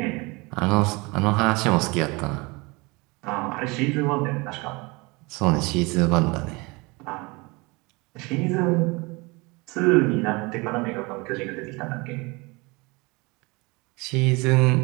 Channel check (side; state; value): left; quieter; 26.0 dB